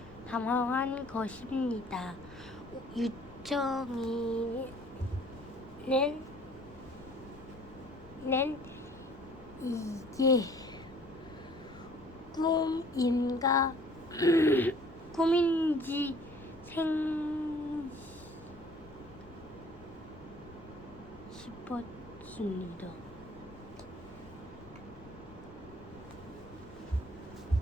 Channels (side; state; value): left; noise; rumble, 20 dB below the sound